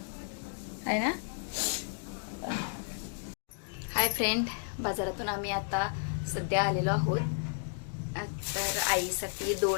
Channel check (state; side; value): silent; right; digital silence